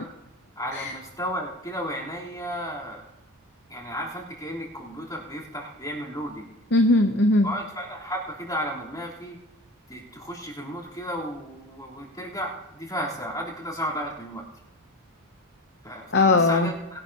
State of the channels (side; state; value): both; normal; correlation 0.28